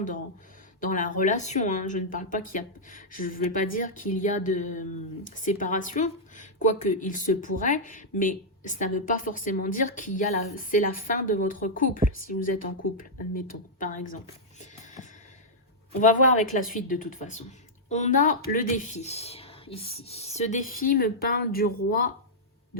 dans la relation. Hein. Je ne parle pas qu'il y a... Je ne vais pas dire qu'il y a de séparation, quoique il se pourrait, mais ça ne veut pas forcément dire qu'il y a c'est la fin de votre couple, si vous êtes en couple, admettons, par exemple. On va voir avec la suite de toute façon. On a le défi, ici. Ce défi me parle du roi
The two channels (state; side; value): normal; both; correlation -0.08